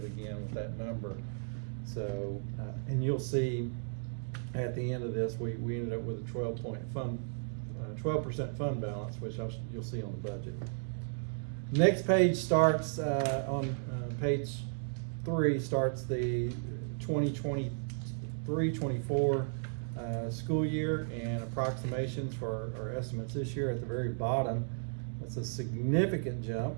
again with that number. So, and you'll see at the end of this, we ended up with a 12% fund balance, which you'll see on the budget. Next page starts on page 3 starts the 2023-24 school year and approximations for our estimates this year. At the very bottom, that's a significant jump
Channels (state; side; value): silent; left; digital silence